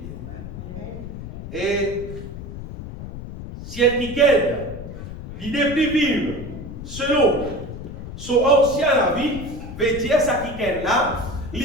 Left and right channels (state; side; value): noise; left; rumble, 10 dB below the sound